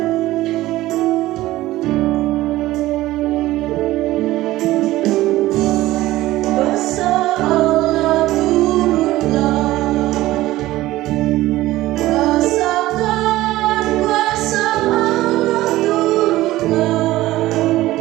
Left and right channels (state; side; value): quieter; left; 16.7 dB